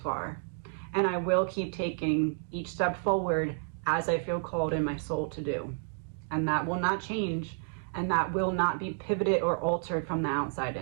And I will keep taking each step forward as I feel called in my soul to do. And that will not change, and that will not be pivoted or altered from the outside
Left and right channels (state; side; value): silent; left; 57 dB below the other